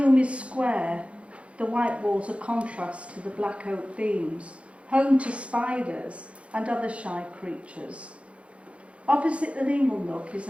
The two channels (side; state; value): left; late; 0.061 ms